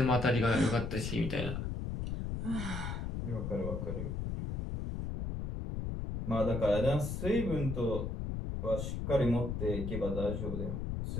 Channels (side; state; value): left; noise; rumble, 3 dB below the sound